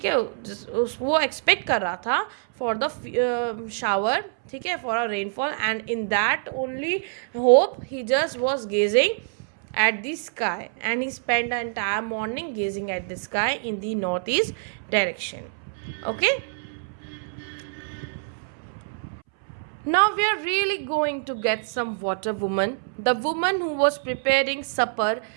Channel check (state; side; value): silent; left; 61 dB below the other